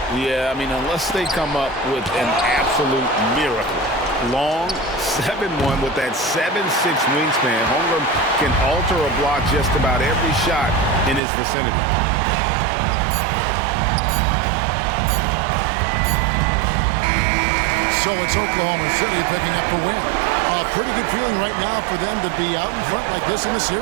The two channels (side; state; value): left; drops out; at 11.2 s